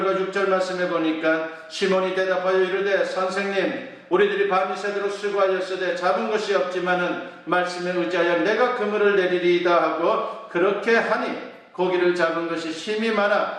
6절 말씀에 보니까 시몬이 대답하여 이르되 선생님 우리들이 밤이 새도록 수고하였으되 잡은 것이 없지만은 말씀에 의지하여 내가 그물을 내리리이다 하고 그렇게 하니 고기를 잡은 것이 심히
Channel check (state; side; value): identical; both; correlation 1.00